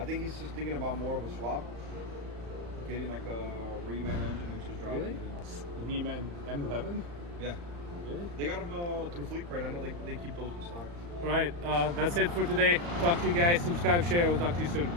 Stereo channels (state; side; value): late; left; 35 ms